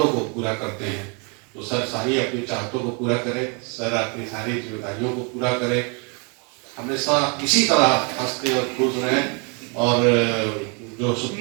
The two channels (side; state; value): left; quieter; 34.6 dB